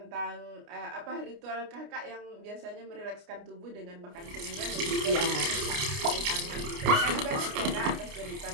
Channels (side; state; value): left; late; 29 ms